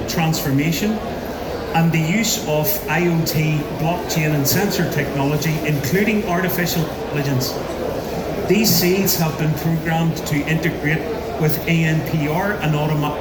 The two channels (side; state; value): both; identical; correlation 1.00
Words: transformation and the use of IoT, blockchain and sensor technology, including artificial intelligence. These seeds have been programmed to integrate with ANPR and automatic